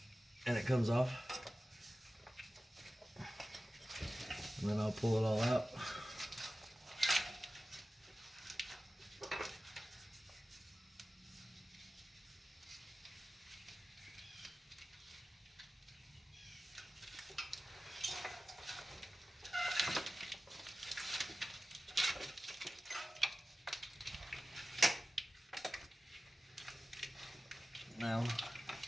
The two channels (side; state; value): both; normal; correlation 0.95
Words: and it comes off. And then I'll pull it all out. Now,